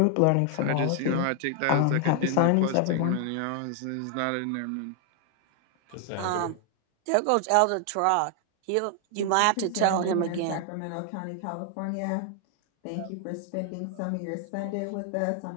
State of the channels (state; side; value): different; both; correlation 0.00